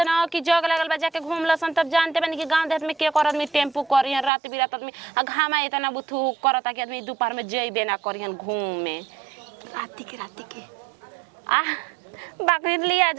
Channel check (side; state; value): left; drops out; at 4.3 s